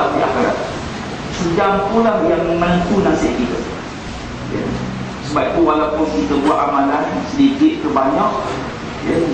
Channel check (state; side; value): identical; both; correlation 1.00